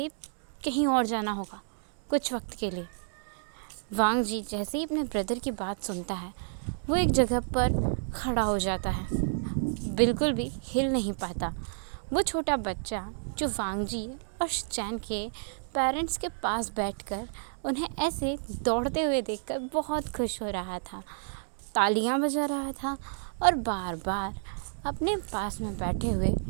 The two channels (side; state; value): left; silent; digital silence